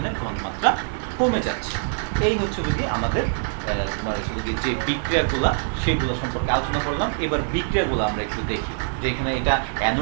ঘনমাত্রা কমে যাচ্ছে। এই হচ্ছে গিয়ে আমাদের তোমার হচ্ছে যে বিক্রিয়াগুলা সেগুলো সম্পর্কে আলোচনা করলাম। এবার বিক্রিয়াগুলো আমরা একটু দেখি যে এখানে এটা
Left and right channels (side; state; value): left; silent; digital silence